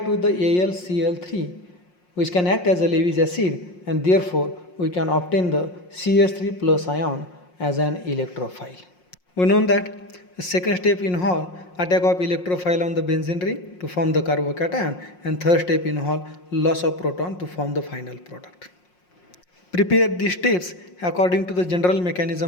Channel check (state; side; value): late; right; 5.6 ms